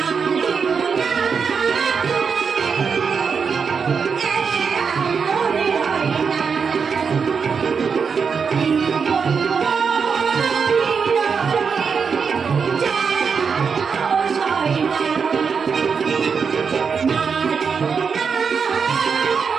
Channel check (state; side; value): quieter; left; 5.9 dB